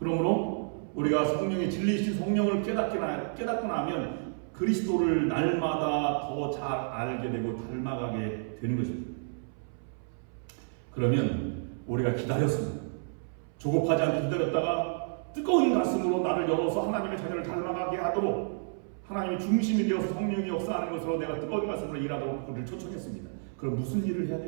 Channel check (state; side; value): silent; left; 58 dB below the other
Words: 우리가 성령의 진리이신 성령을 깨닫고 나면 그리스도를 날마다 더 잘 알게 되고 닮아가게 되는 것입니다. 그러면 우리가 기다렸습니다. 조급하지 않게 기다렸다가 뜨거운 가슴으로 나를 열어서 하나님의 자녀를 닮아가게 하도록 하나님의 중심이 되어서 성령이 역사하는 것으로 내가 뜨거운 가슴으로 일하도록 그를 초청했습니다. 그럼 무슨 일을 해야